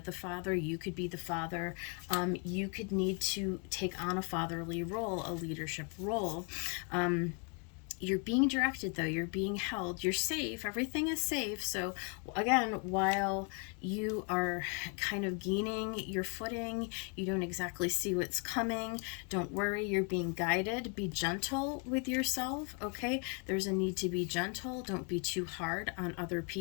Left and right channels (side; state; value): right; quieter; 37.7 dB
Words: the father, you could be the father. You could need to take on a fatherly role, a leadership role. You're being directed, though. You're being held. You're safe. Everything is safe. So again, while you are kind of gaining your footing, you don't exactly see what's coming. Don't worry. You're being guided. Be gentle with yourself, okay? There's a need to be gentle. Don't be too hard on other